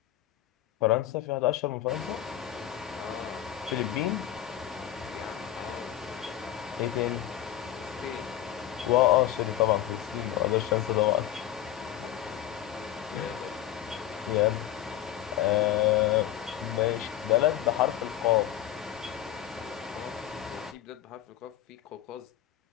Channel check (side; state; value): right; quieter; 12.1 dB